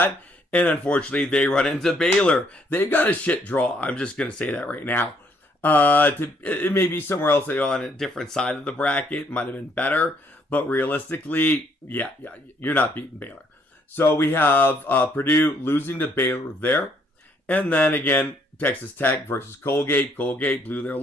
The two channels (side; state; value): both; normal; correlation 0.68